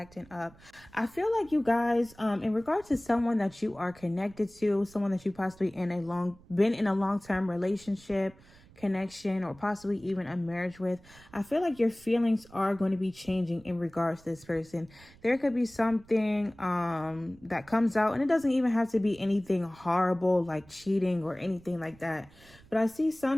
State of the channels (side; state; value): right; noise; rumble, 24 dB below the sound